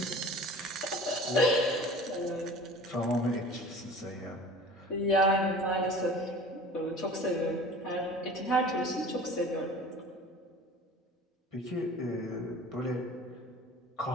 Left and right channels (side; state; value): both; normal; correlation 0.42